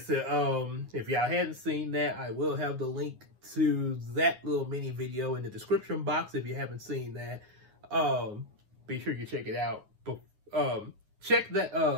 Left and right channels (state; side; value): late; left; 9.5 ms